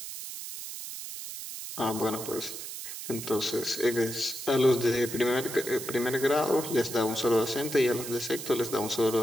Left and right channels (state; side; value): noise; right; hiss, 9 dB below the sound